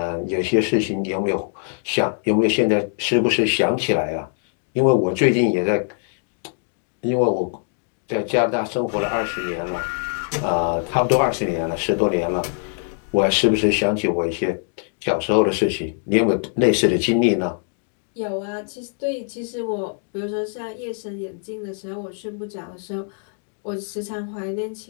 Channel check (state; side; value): silent; right; 58 dB below the other